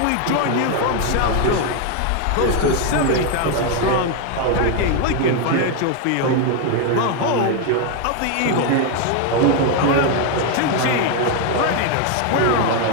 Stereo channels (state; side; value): different; both; correlation 0.01